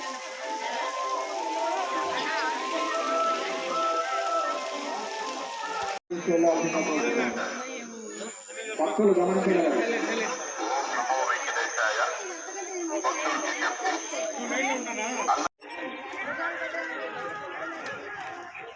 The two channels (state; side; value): identical; both; correlation 1.00